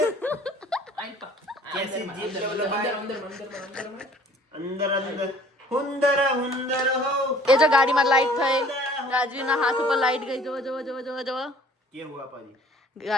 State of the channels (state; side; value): normal; both; correlation 0.53